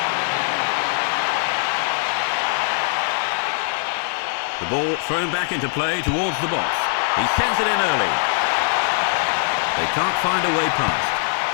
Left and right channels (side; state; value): right; silent; digital silence